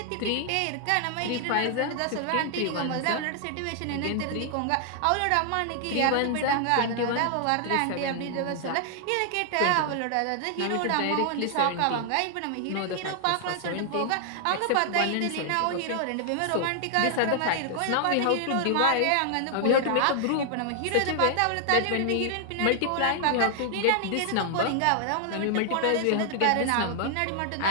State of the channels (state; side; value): different; both; correlation 0.00